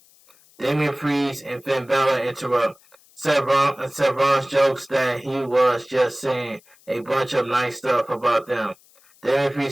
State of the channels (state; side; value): noise; left; hiss, 29 dB below the sound